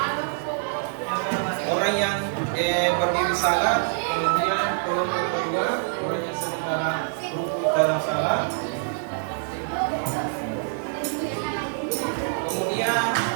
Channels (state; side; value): silent; left; 56 dB below the other